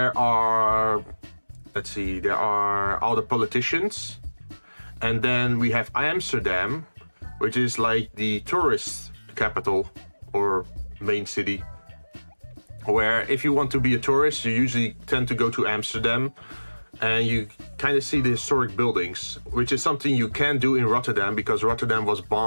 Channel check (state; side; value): inverted; both; correlation -1.00